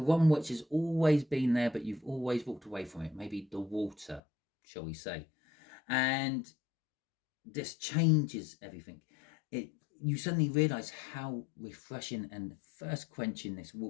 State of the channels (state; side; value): drops out; right; at 4.2 s